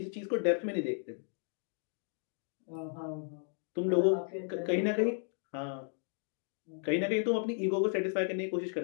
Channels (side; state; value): right; silent; 55 dB below the other